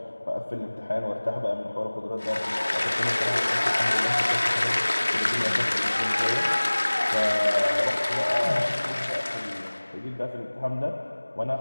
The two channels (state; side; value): inverted; both; correlation -1.00